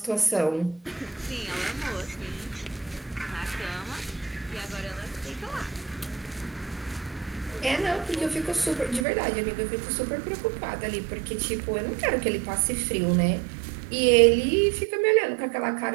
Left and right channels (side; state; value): left; drops out; at 9.1 s